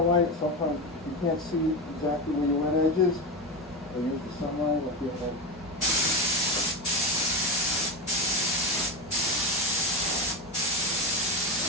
white, sometimes you can't see exactly where your wet edge is. I use the sunlight, I feel like.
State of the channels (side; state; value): both; normal; correlation 0.19